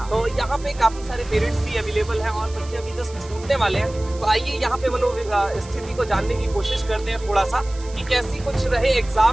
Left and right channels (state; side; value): noise; right; hiss, 20 dB below the sound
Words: तो यहाँ पे काफी सारे पेरेंट्स भी अवेलेबल हैं और बच्चे अभी जस्ट छूटने वाले हैं। तो आइए यहाँ पे स्थिति को जानने की कोशिश करते हैं थोड़ा सा कि कैसी कुछ रहे